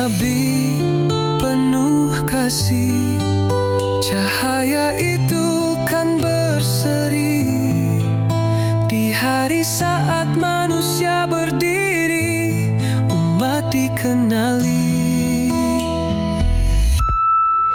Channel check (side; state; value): both; identical; correlation 1.00